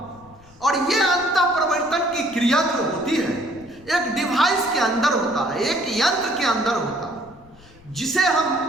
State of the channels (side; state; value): left; noise; rumble, 25 dB below the sound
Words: और ये अंतः परिवर्तन की क्रिया जो होती है एक डिवाइस के अंदर होता है, एक यंत्र के अंदर होता है, जिसे हम